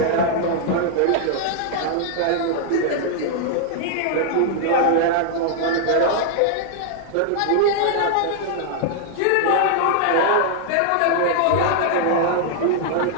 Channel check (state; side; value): different; both; correlation -0.01